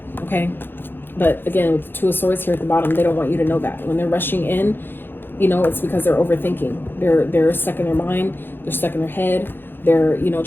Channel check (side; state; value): right; late; 0.10 ms